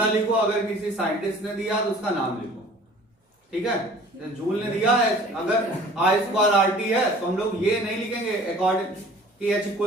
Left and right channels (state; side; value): normal; both; correlation 0.49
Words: लिखो, अगर किसी साइंटिस्ट ने दिया तो उसका नाम लिखो, ठीक है। जूल ने दिया है, अगर आई स्क्वायर आर टी है तो हम लोग ये नहीं लिखेंगे अकॉर्डिंग कि H